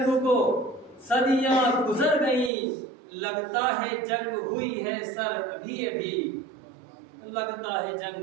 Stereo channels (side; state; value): left; drops out; at 2.5 s